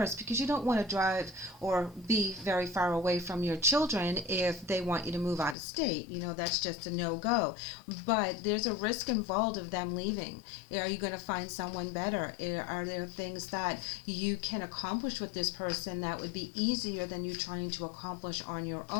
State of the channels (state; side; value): drops out; right; at 5.6 s